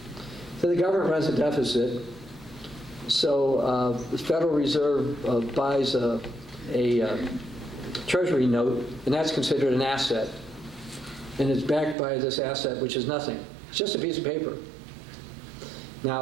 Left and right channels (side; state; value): left; drops out; at 12.0 s